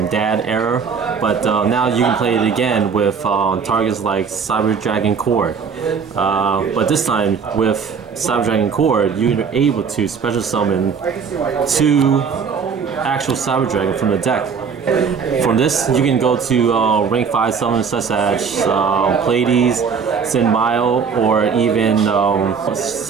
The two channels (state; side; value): quieter; left; 6.1 dB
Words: era, but now you can play it again with targets like Cyber Dragon Core. But this time with Cyber Dragon Core, you're able to special summon 2 actual Cyber Dragon from the deck. From this, you can go to rank 5 summons such as Pleiades, Sinbile, or even